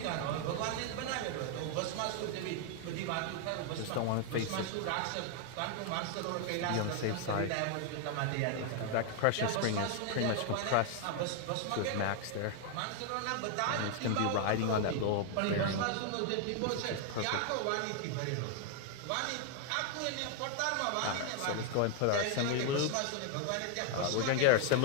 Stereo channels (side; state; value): both; different; correlation 0.00